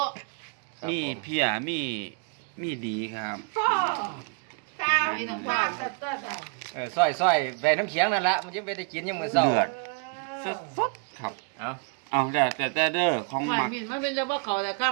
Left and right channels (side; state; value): left; quieter; 36.4 dB